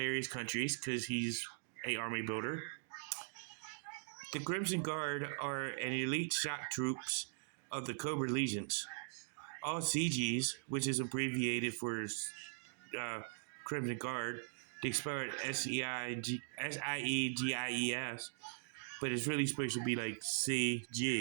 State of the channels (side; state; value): left; silent; digital silence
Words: countries because he's an army builder. The Crimson Guard are an elite shock troops of the Cobra Legions. All CGs, which is abbreviated for Crimson Guard, they spell it SIEGIES, but it's really supposed to be like